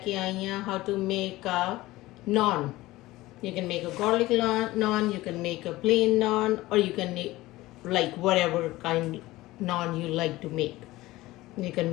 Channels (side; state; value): right; quieter; 18.2 dB